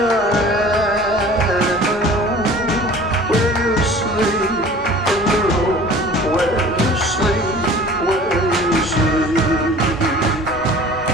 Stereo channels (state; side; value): normal; both; correlation 0.45